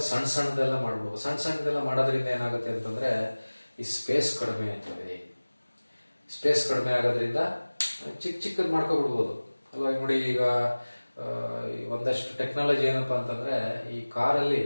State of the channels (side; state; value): both; inverted; correlation -1.00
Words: ಸಣ್ಣದೆಲ್ಲ ಮಾಡ್ಬೋದು. ಸಣ್ಣದೆಲ್ಲ ಮಾಡೋದ್ರಿಂದ ಏನಾಗುತ್ತೆ ಅಂತಂದ್ರೆ, ಈ ಸ್ಪೇಸ್ ಕಡಿಮೆ ಆಗ್ತದೆ. ಸ್ಪೇಸ್ ಕಡಿಮೆ ಆಗೋದ್ರಿಂದ ಚಿಕ್ಕದ್ ಮಾಡ್ಕೊಬಿಡ್ಬೋದು ಅಲ್ವಾ? ನೋಡಿ, ಈಗ ಒಂದಷ್ಟು ಟೆಕ್ನಾಲಜಿ ಏನಪ್ಪಾ ಅಂತಂದ್ರೆ, ಈ ಕಾರಲ್ಲಿ